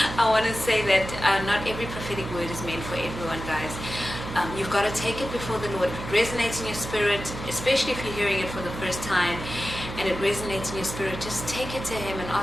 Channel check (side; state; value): right; noise; hum, 9 dB below the sound